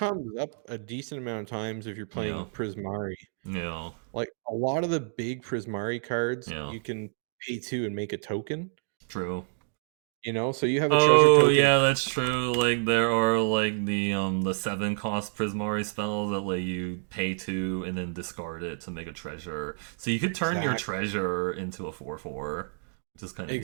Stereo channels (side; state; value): left; silent; digital silence